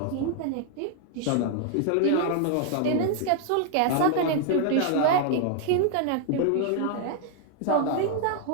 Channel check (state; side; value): different; both; correlation 0.00